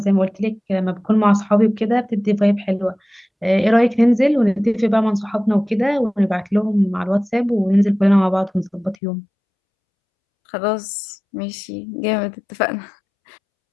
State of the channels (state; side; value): drops out; right; at 9.0 s